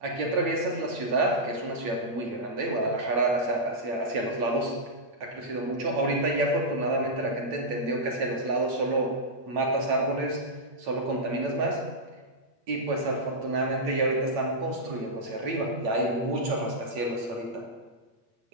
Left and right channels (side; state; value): left; late; 8.5 ms